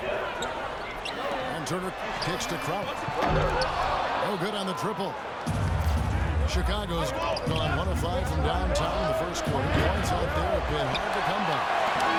And Turner kicks to Crowder. No good on the triple. Chicago's gone 1 of 5 from downtown in the first quarter. Points out there have been hard to come by.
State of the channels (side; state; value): both; identical; correlation 1.00